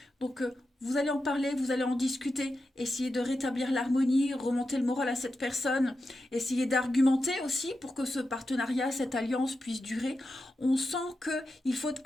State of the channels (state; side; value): normal; both; correlation 0.89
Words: Donc, vous allez en parler, vous allez en discuter, essayer de rétablir l'harmonie, remonter le moral à cette personne, essayer d'argumenter aussi pour que ce partenariat, cette alliance puisse durer. On sent qu'il faut